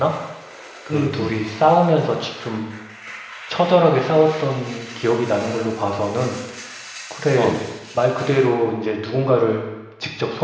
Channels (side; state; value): both; identical; correlation 1.00